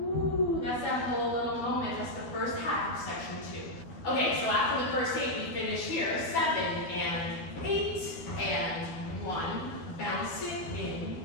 that's that whole little moment. That's the first half of section 2. Okay, so after the first 8, we finish here. 7 and 8 and 1. Bounce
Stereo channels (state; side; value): late; right; 12 ms